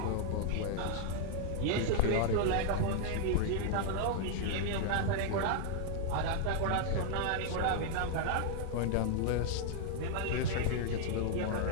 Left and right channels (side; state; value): both; different; correlation -0.01